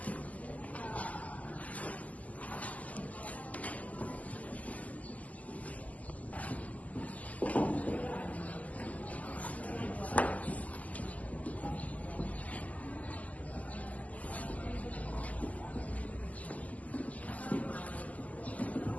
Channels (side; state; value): right; late; 0.075 ms